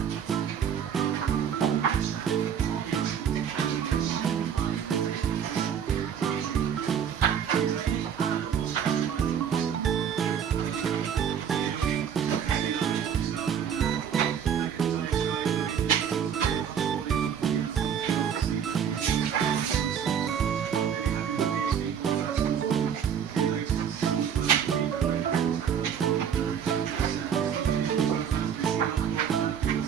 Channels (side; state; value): left; quieter; 8.2 dB